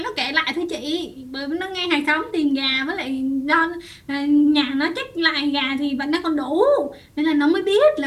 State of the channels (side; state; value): both; identical; correlation 1.00